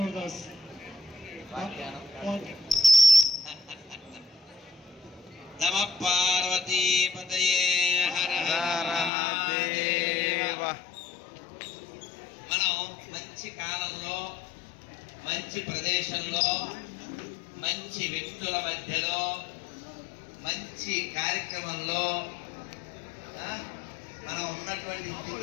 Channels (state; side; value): drops out; right; at 9.1 s